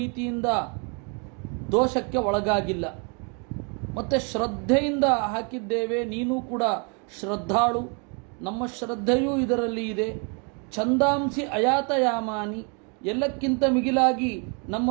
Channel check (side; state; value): left; quieter; 35.7 dB